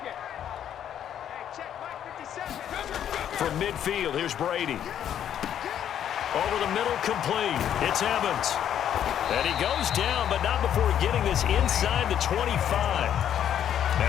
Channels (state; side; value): quieter; right; 9.9 dB